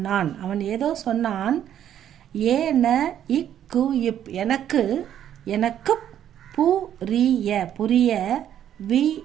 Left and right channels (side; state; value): left; quieter; 10.4 dB